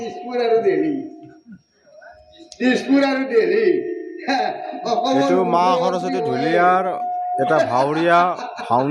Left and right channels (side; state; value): both; identical; correlation 1.00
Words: আৰু দেৰি, দিছপুৰ আৰু দেৰি। এইটো মা সৰস্বতী ঢুলীয়াৰ এটা ভাৱৰীয়া